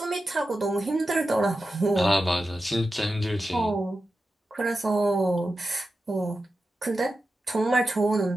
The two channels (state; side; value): normal; both; correlation 0.91